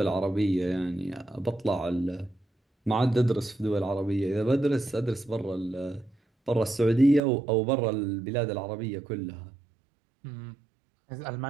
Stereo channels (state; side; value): drops out; left; at 7.2 s